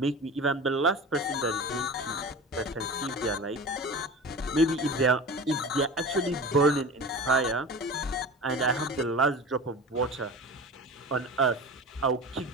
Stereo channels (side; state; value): both; normal; correlation 0.34